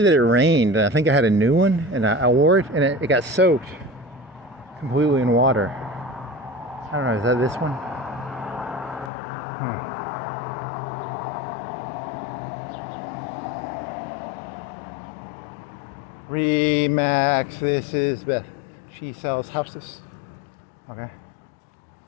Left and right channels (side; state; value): right; drops out; at 9.1 s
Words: it rained, and I think I had a new one, and I wore it, and it got soaked completely in water. I don't know, is that this one? Remax, this is Beth. She sells houses. Okay.